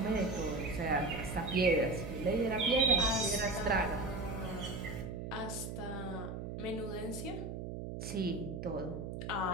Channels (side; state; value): right; noise; hum, 6 dB below the sound